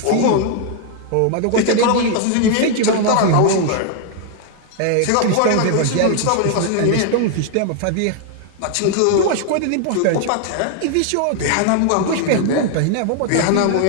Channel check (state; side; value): different; both; correlation 0.00